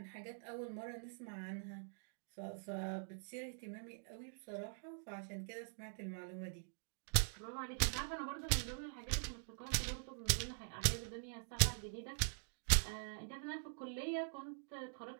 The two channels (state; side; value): silent; left; digital silence